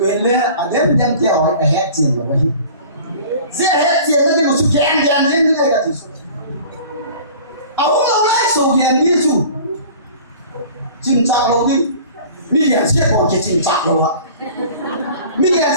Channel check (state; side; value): inverted; both; correlation -0.44